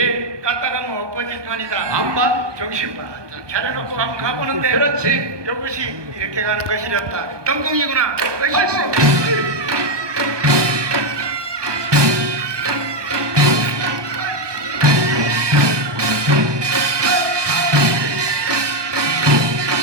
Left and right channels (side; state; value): left; late; 1.2 ms